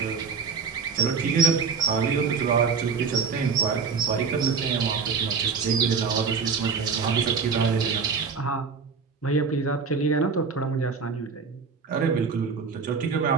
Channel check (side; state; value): left; quieter; 5.4 dB